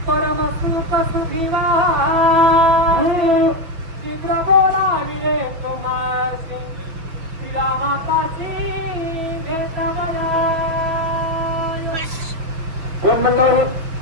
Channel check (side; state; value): left; late; 6.1 ms